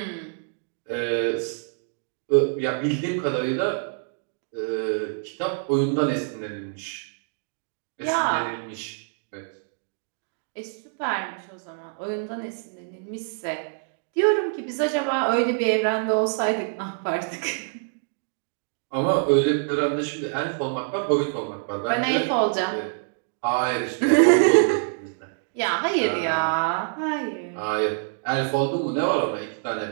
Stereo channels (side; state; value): left; silent; digital silence